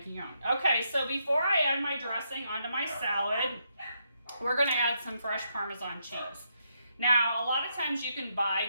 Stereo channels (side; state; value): both; inverted; correlation -0.79